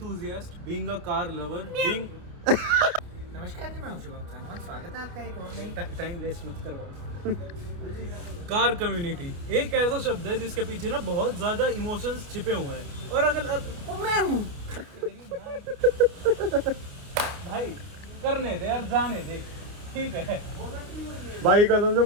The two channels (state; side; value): late; left; 29 ms